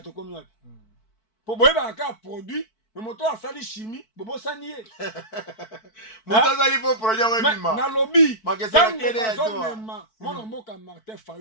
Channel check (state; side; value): late; right; 4.5 ms